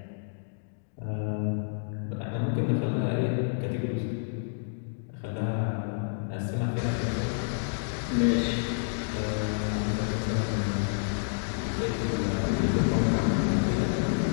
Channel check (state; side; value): silent; right; digital silence